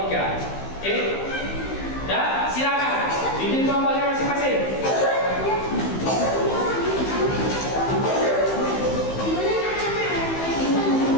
3. Oke? Ya, silakan bikin kelompoknya masing-masing.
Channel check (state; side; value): late; right; 15 ms